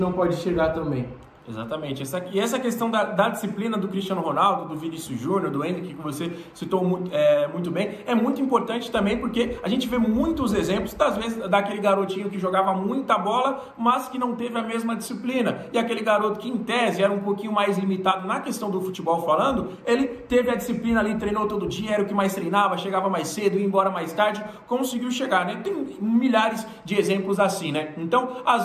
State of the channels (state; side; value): identical; both; correlation 1.00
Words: pode chegar também? Exatamente. Essa questão da disciplina do Cristiano Ronaldo, do Vinícius Júnior, do Endrick, que você citou muito bem, é muito importante também porque a gente vê muitos exemplos, às vezes, daquele garotinho que jogava muita bola, mas que não teve a mesma disciplina. E aquele garoto que, em tese, era um pouquinho mais limitado na questão do futebol falando, ele teve a disciplina ali, treinou todo dia, era o que mais treinava, chegava mais cedo, ia embora mais tarde, conseguiu chegar, né? Tem milhares de exemplos assim, né? Então,